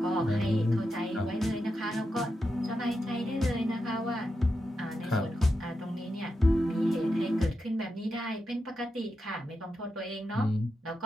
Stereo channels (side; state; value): both; normal; correlation 0.87